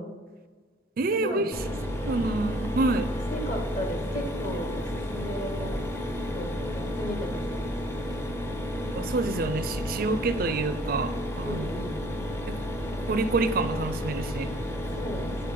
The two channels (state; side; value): normal; both; correlation 0.56